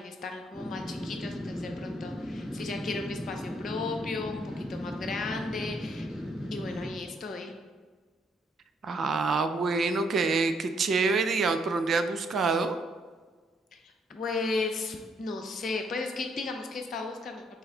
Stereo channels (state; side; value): normal; both; correlation 0.71